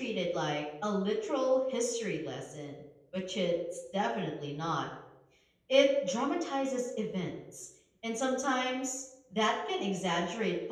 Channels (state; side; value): identical; both; correlation 1.00